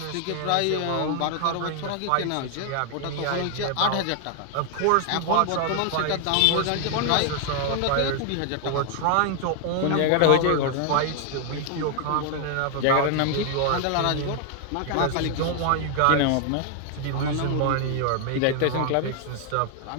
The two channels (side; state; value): both; different; correlation 0.00